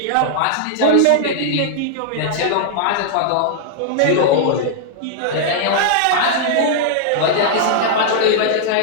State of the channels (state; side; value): different; both; correlation -0.01